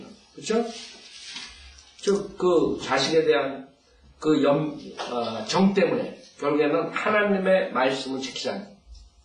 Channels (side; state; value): both; identical; correlation 1.00